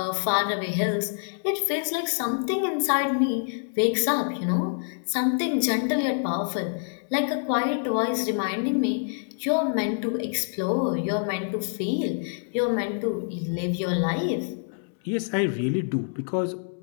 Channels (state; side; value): silent; right; digital silence